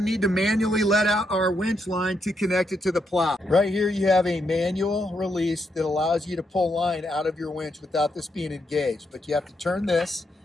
need to manually let out our winch line to connect it to the plow. Right here you have a manual release that allows you to pull line out of your winch without this being engaged. But you have to turn this,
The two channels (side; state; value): both; normal; correlation 0.80